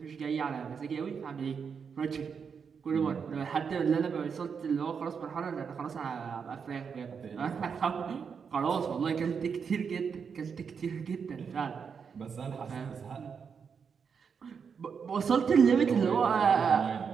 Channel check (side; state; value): left; quieter; 6.3 dB